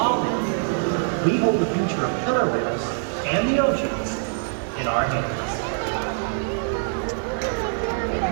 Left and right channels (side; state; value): left; silent; 62 dB below the other